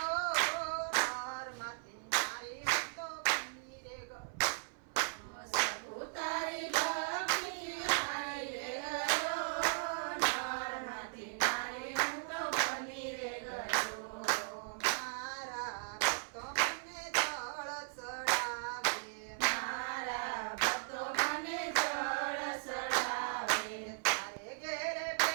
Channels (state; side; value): silent; left; 53 dB below the other